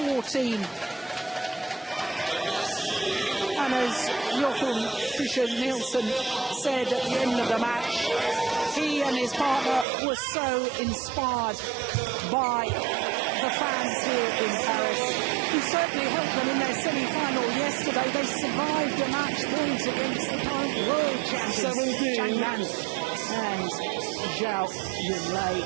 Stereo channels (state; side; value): drops out; left; at 9.9 s